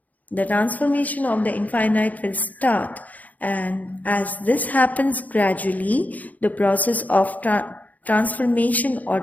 the transformation of the infinite will start. And as this happens gradually, the process of transformation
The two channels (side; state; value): right; late; 0.078 ms